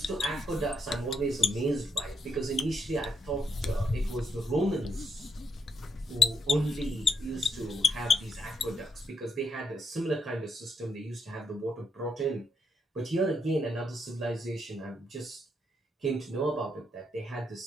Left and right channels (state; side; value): normal; both; correlation 0.78